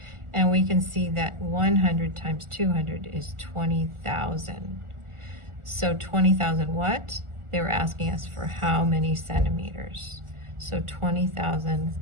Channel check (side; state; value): left; late; 1.4 ms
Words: and we can see that 100 times 200 is 20,000. So 20,000 what? They were asking us for how many centimeters. So 20,000